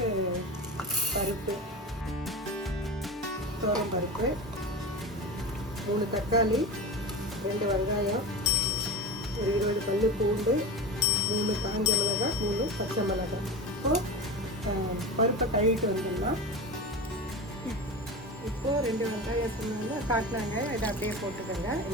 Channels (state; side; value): normal; both; correlation 0.27